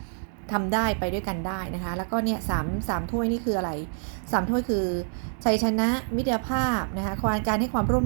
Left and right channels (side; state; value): left; silent; digital silence